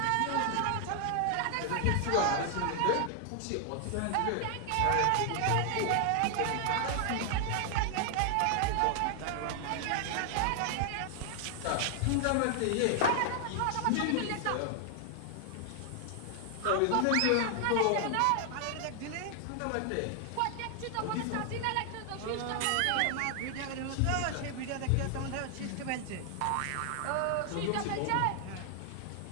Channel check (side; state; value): both; different; correlation 0.00